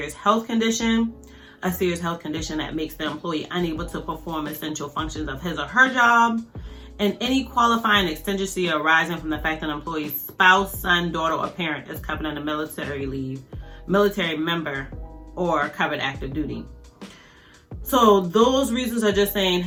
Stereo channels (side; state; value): both; identical; correlation 1.00